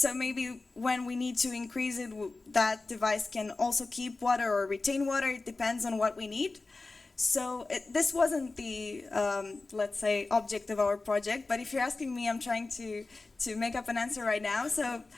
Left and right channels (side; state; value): right; quieter; 3.5 dB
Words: maybe when we need to increase it, that device can also keep water or retain water. It depends on what we need. So this wasn't the, let's say, object of our project, but if you're asking me, I'm trying to make up an answer right now. So